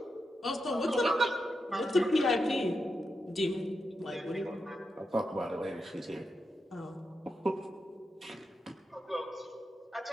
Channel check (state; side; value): normal; both; correlation 0.86